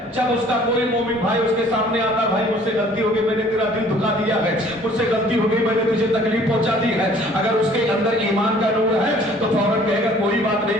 جب اس کا کوئی مومن بھائی اس کے سامنے آتا، بھائی مجھ سے غلطی ہو گئی، میں نے تیرا دل دکھا دیا ہے، مجھ سے غلطی ہو گئی، میں نے تجھے تکلیف پہنچا دی ہے، اگر اس کے اندر ایمان کا نور ہے تو فوراً کہے گا کوئی بات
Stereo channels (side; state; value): both; normal; correlation 0.54